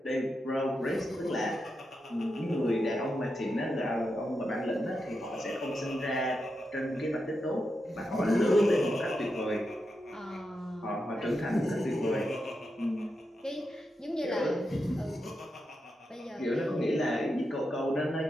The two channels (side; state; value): both; normal; correlation 0.87